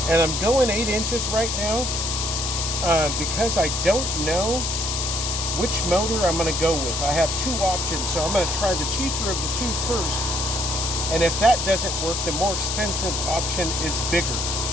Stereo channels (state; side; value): noise; left; hiss, 2 dB below the sound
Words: and I'm going 8 inches right now because I don't know which motor I'm going to go with. I have two options, so I'm going to try the cheaper of the two first, And if that doesn't work, the more expensive option is bigger.